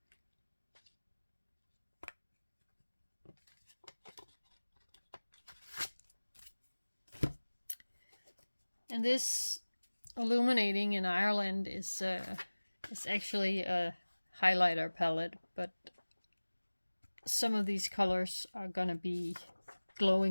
And this Illuminating in Ireland is actually a highlighter palette, but some of these colors are gonna be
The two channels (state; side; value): inverted; both; correlation -1.00